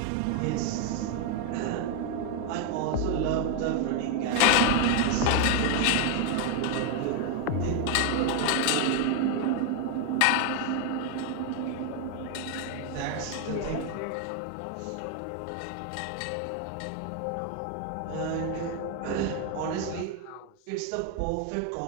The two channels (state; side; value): different; both; correlation 0.01